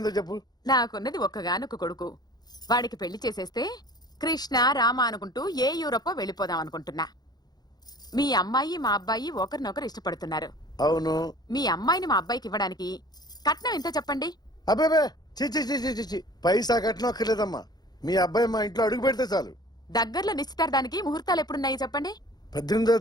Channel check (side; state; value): right; late; 0.19 ms